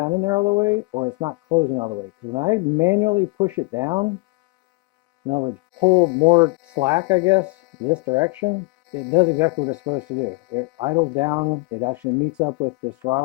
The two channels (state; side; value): quieter; right; 26.2 dB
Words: in there all the way or it's not closing all the way. Because when I manually push it down, in other words, pull more slack, I guess, this direction, it does exactly what it's supposed to do. It idles down, it actually meets up with this